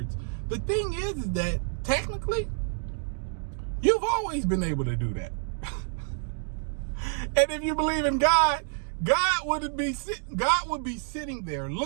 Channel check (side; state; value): left; silent; 59 dB below the other